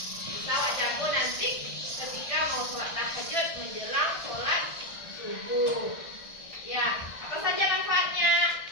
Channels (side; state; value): right; late; 1.6 ms